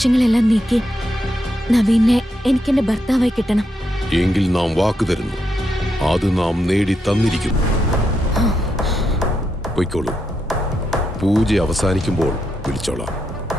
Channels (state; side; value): normal; both; correlation 0.82